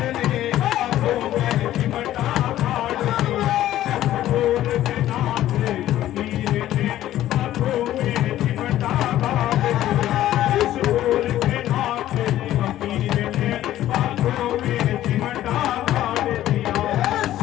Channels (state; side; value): quieter; right; 13.4 dB